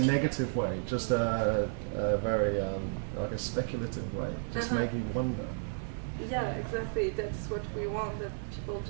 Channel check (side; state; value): left; silent; 56 dB below the other